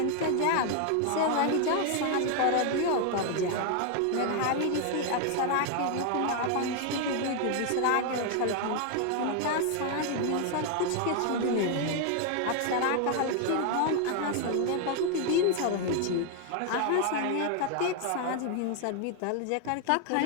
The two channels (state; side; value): different; both; correlation 0.00